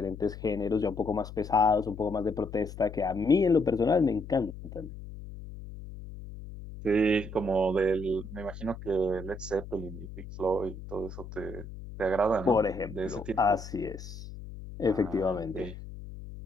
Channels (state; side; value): noise; left; hum, 12 dB below the sound